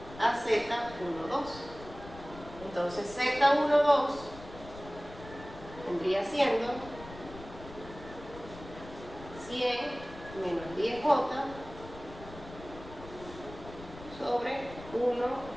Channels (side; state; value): left; noise; rumble, 16 dB below the sound